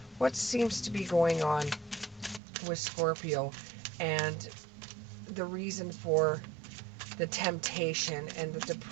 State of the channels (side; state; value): left; drops out; at 2.4 s